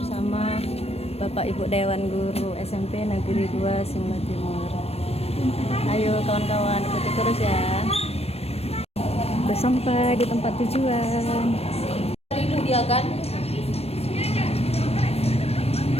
Bapak Ibu Dewan Guru SMP Negeri 2 Simla Timur. Ayo kawan-kawan, ikuti terus ya. Udah sampai di tempat tujuan. Ini dia kan?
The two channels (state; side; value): late; right; 0.29 ms